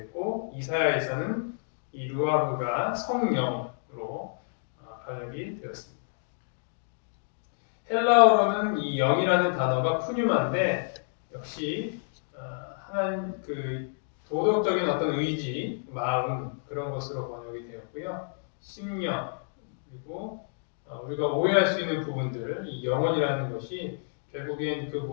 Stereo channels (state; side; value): silent; right; digital silence